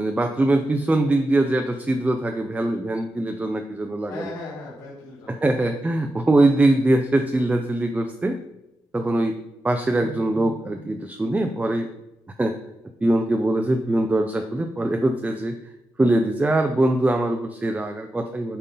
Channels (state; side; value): normal; both; correlation 0.91